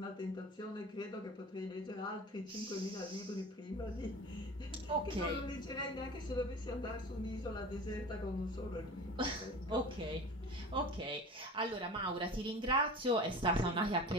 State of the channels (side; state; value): both; normal; correlation 0.36